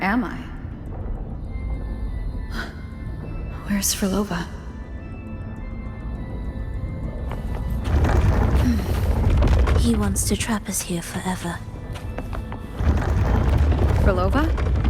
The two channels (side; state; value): both; identical; correlation 1.00